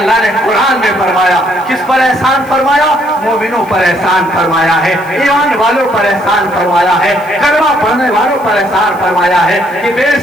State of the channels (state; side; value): noise; left; hiss, 24 dB below the sound